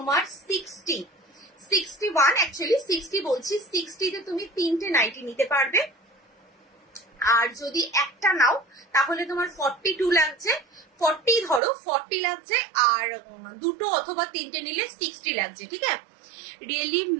61, অ্যাকচুয়ালি 60 বলছি, 60তে তুমি 3টে নাইটি নিতে পারবে, আর যদি একটা নাও তাহলে তোমার 42 লাগছে, 40 ধরো, 40 লাগছে, আর দুটো অথবা 3টে নিলে 60 লাগছে, ঠিক আছে। रियली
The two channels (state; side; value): drops out; left; at 11.6 s